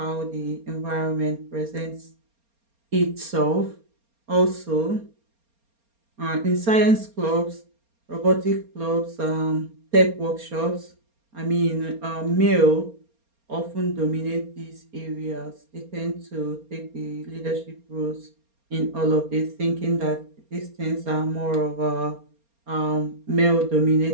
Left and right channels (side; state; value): left; late; 4.3 ms